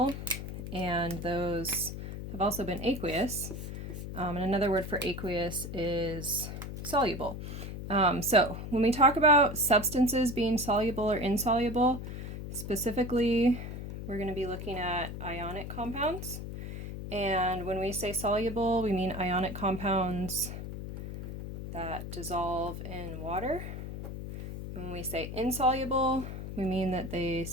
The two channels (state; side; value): noise; left; hum, 7 dB below the sound